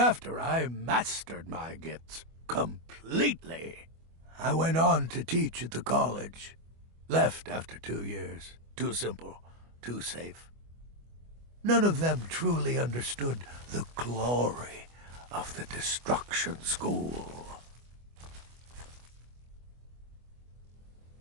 I mastered my gifts completely. I went on to teach at the college. Left after 2 years. Too simple. Too safe. None of them truly understood the glory of the Destruction School.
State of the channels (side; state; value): left; late; 25 ms